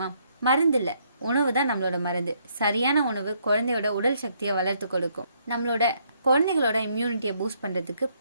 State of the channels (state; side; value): inverted; both; correlation -0.71